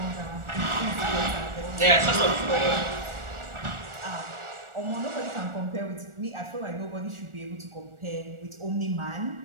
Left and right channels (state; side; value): late; left; 1.4 ms